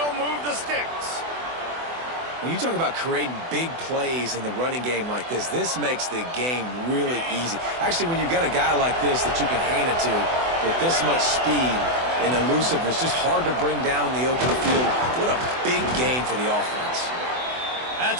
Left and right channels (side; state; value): left; late; 24 ms